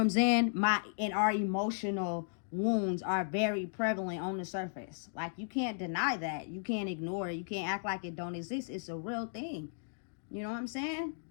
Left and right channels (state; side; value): silent; right; digital silence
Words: I'm saying? Our emotional wounds are very prevalent on the surface. Like, you can't deny that. You can't ignore it. You can't act like it don't exist. It's a real thing. You know what I'm saying?